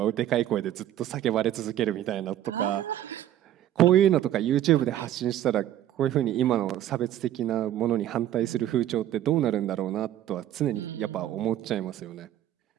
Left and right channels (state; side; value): quieter; left; 12.2 dB